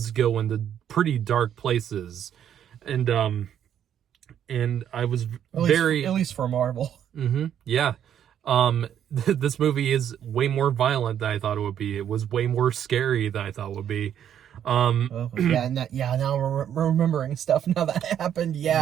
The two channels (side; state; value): left; quieter; 9.7 dB